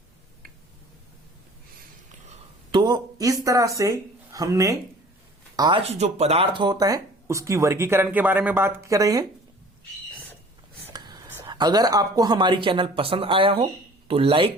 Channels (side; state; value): both; normal; correlation 0.48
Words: तो इस तरह से हमने आज जो पदार्थ होता है उसकी वर्गीकरण के बारे में बात कर रहे हैं। अगर आपको हमारी चैनल पसंद आया हो तो